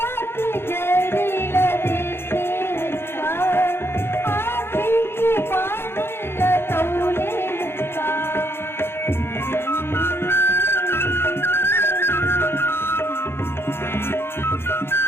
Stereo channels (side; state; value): right; late; 0.11 ms